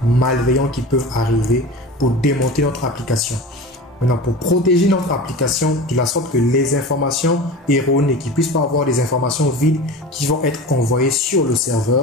malveillants qui peuvent arriver pour démonter notre application. Maintenant, pour protéger notre application de la sorte que les informations erronées, qui ne puissent pas avoir des informations vides qui vont être envoyées sur le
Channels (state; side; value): normal; both; correlation 0.33